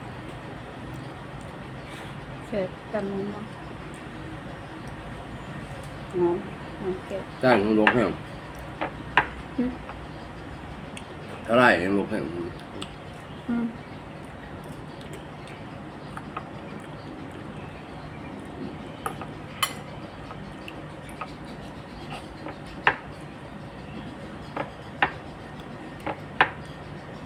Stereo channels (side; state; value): both; identical; correlation 1.00